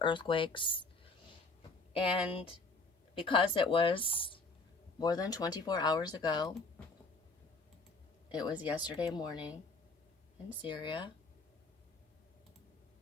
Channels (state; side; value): quieter; right; 3.4 dB